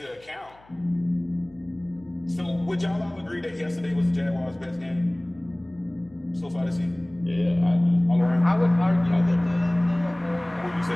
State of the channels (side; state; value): left; noise; hum, 28 dB below the sound